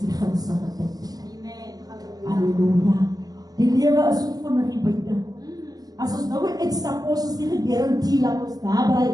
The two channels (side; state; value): left; late; 0.18 ms